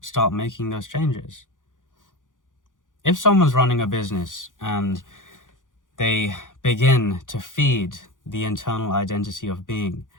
making those changes. If someone's running a business and they begin to feed the internal identity of being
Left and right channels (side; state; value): right; late; 0.88 ms